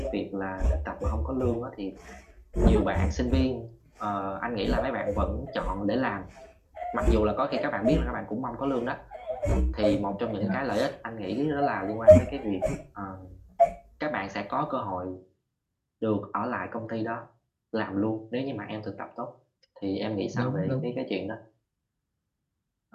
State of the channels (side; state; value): both; identical; correlation 1.00